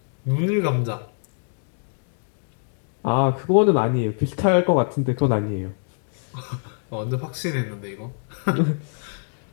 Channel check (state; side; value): silent; right; 62 dB below the other